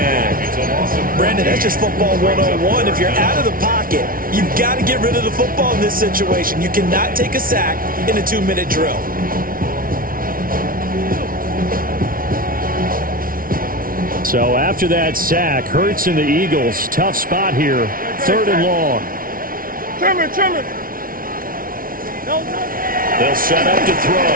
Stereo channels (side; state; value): left; late; 0.42 ms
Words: Brandon, that's just football 101. If you're out of the pocket, you've got to get rid of the football in this situation. You cannot take a sack in a 2-minute drill. So after that sack, Hurts and the Eagles, tough spot here, 3rd and long. Trimmer. They'll set up to